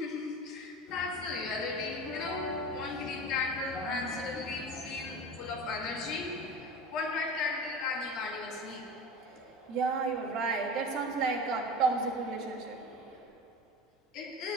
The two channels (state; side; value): normal; both; correlation 0.31